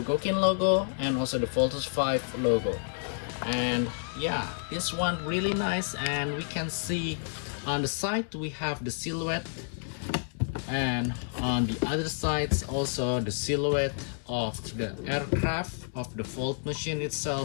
logo and also the Voltes V logo. And yeah, this one really nice, and we can see on the side we have the silhouette, and on the other sides also the silhouette of the aircraft of the Volt machine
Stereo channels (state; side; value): silent; right; digital silence